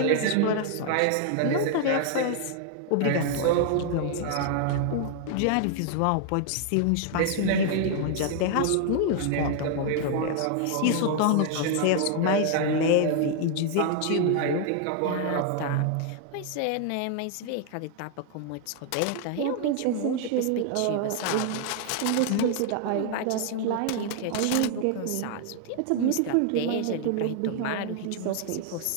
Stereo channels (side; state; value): both; different; correlation 0.00